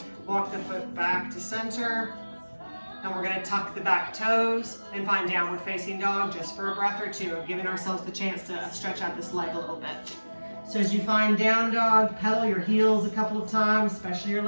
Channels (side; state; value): both; inverted; correlation -1.00